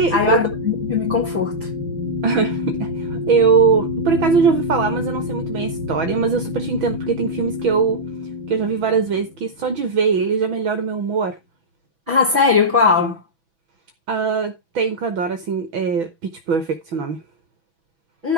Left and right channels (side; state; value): left; late; 6.0 ms